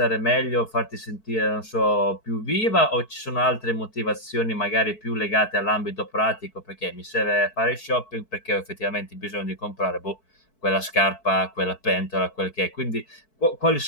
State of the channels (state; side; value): late; right; 4.6 ms